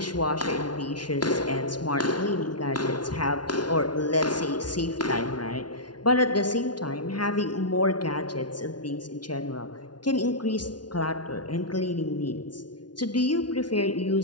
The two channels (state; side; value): late; right; 0.70 ms